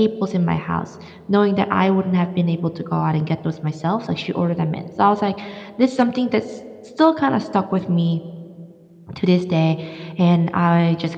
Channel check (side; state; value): both; identical; correlation 1.00